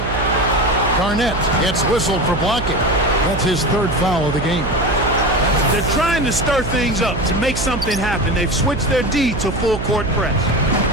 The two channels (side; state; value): right; noise; hum, 5 dB below the sound